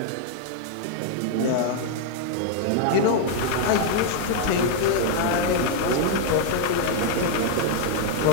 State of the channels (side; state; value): both; different; correlation 0.00